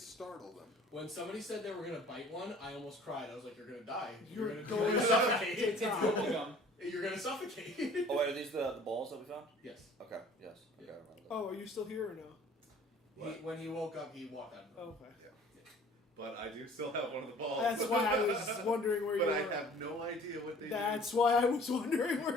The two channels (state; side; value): normal; both; correlation 0.50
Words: them. When somebody said they were gonna bite one, I almost cried. I was like, "You're gonna die. You're You're going gonna to suffocate. It's bubblegum. You're gonna suffocate." Oh wait, are these the balls that we found? Yes. Okay. Yes. Okay. I remember that. Oh, are you still here or no? When he woke up, he walked out. Oh, okay. But I do still have one of the balls. That's why I was wondering where you But were. I have no idea what they That's why I was wondering